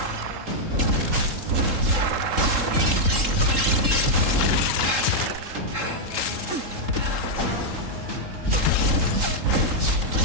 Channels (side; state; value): left; late; 3.7 ms